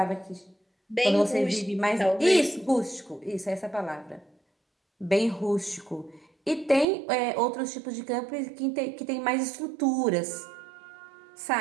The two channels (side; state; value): left; drops out; at 6.9 s